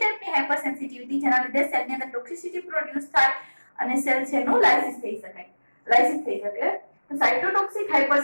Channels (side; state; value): both; inverted; correlation -1.00